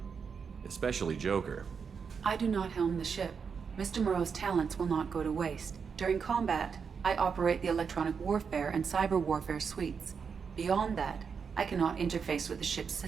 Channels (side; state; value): left; quieter; 6.1 dB